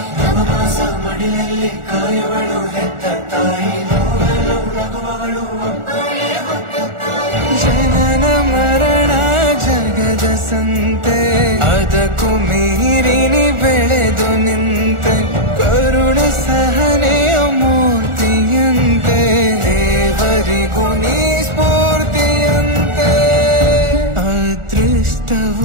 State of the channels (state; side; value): late; left; 1.4 ms